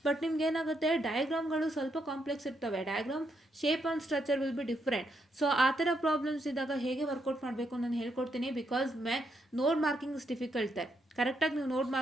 ಬಟ್ ನಿಮ್ಗೆ ಏನಾಗುತ್ತೆ, ಡಯಾಗ್ರಾಮ್ಗಳು ಸ್ವಲ್ಪ ಕಾಂಪ್ಲೆಕ್ಸ್ ಇರ್ತವೆ. Diagram shape and structure will be different. So ಆ ಥರ ಪ್ರಾಬ್ಲಮ್ಸ್ ಇದ್ದಾಗ ಹೇಗೆ ವರ್ಕೌಟ್ ಮಾಡಬೇಕು ನಾನು ಹೇಳ್ಕೊಡ್ತೀನಿ. ಬಿಕಾಸ್ ನೋಡ್ ಮಾರ್ಕಿಂಗ್ ಇಸ್ ಡಿಫಿಕಲ್ಟ್. ಕರೆಕ್ಟಾಗಿ ನೀವು ನೋಟ್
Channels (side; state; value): both; normal; correlation 0.79